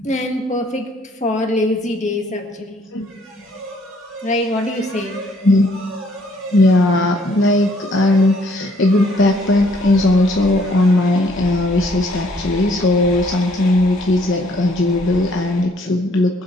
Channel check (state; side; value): normal; both; correlation 0.64